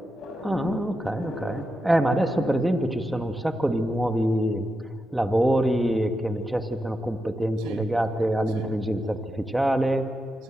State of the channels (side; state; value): both; normal; correlation 0.88